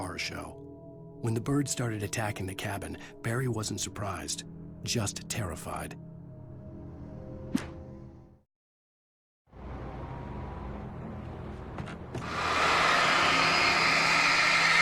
show. When the birds started attacking the cabin, Barry wasn't surprised, just terrified.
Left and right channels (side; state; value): both; identical; correlation 1.00